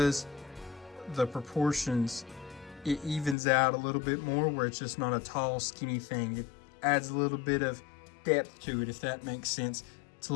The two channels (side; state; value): right; drops out; at 3.4 s